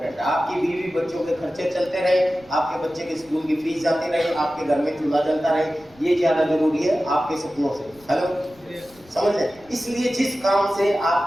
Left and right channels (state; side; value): noise; left; rumble, 27 dB below the sound